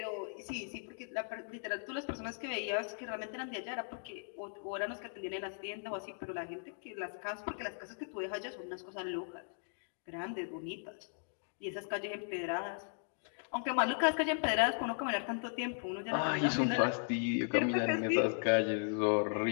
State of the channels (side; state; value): right; silent; digital silence